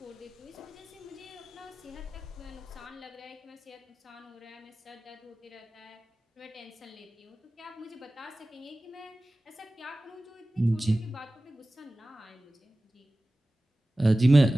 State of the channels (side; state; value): both; normal; correlation 0.97